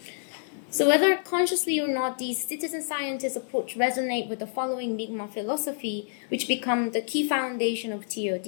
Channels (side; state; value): right; silent; 59 dB below the other